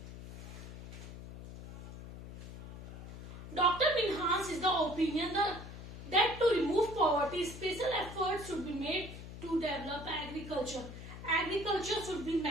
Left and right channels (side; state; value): left; noise; hum, 12 dB below the sound